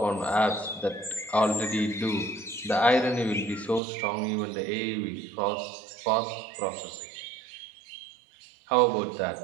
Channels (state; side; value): drops out; left; at 3.8 s